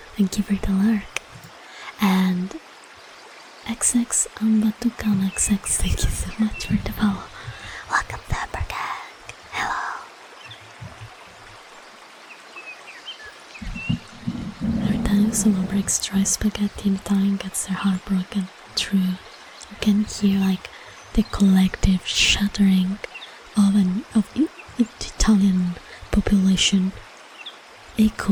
Thank you for the lurk. And XX Ambatukan XX, thank you so much for the follow. Welcome to Upper Gang. Hello. Every time someone breaks dry spaghetti in Italian gets their heart broken. True. You can hear like the collective shuddering of the Italian population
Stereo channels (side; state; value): both; identical; correlation 1.00